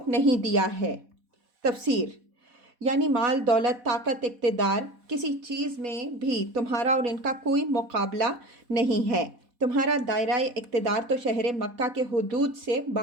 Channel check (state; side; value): late; left; 4.1 ms